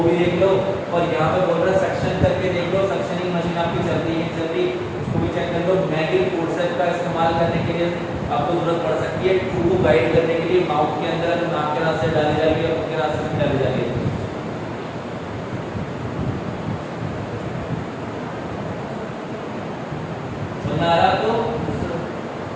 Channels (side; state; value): both; identical; correlation 1.00